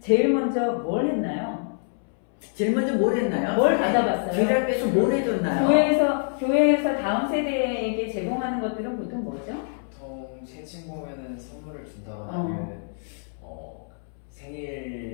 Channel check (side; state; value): right; silent; 61 dB below the other